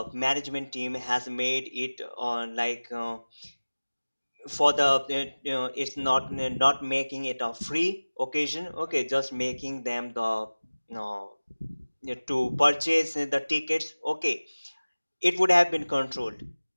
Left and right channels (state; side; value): inverted; both; correlation -1.00